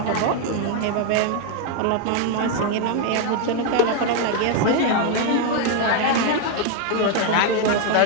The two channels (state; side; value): different; both; correlation 0.01